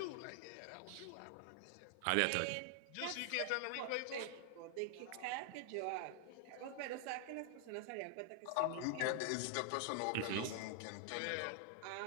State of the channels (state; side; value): different; both; correlation 0.00